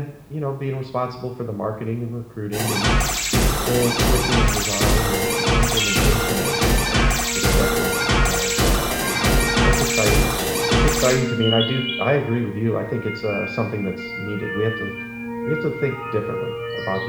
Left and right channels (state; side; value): identical; both; correlation 1.00